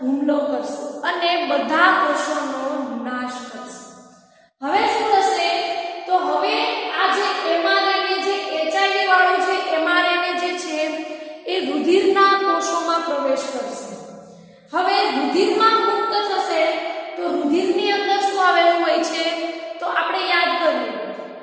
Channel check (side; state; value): both; identical; correlation 1.00